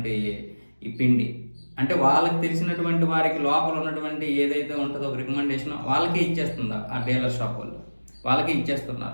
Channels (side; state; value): both; inverted; correlation -1.00